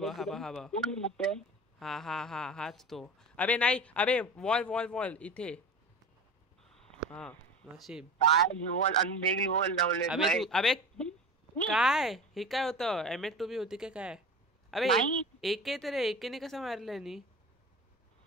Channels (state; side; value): normal; both; correlation 0.32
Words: हा हाच तो. अबे नाही. अबे वॉल इथे. हा नशीब. अबे काय हे काय होतं. M8 होती काय. अबे एके तर एकेने कसं मारलंय नी.